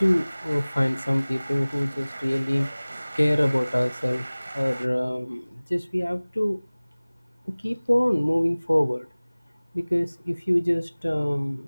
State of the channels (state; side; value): inverted; both; correlation -1.00